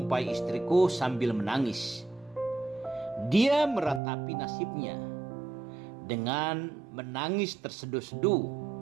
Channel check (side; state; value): left; drops out; at 4.0 s